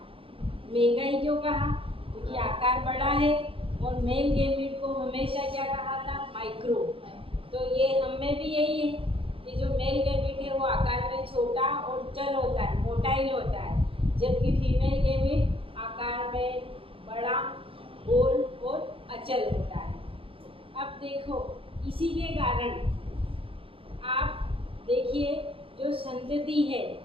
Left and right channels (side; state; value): left; late; 0.27 ms